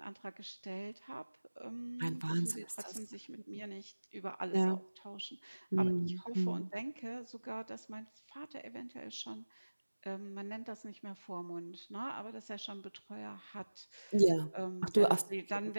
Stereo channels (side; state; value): both; inverted; correlation -1.00